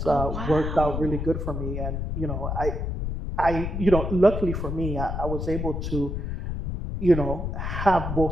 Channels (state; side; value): noise; left; rumble, 3 dB below the sound